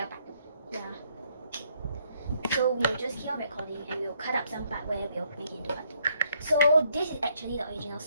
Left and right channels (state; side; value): inverted; both; correlation -0.69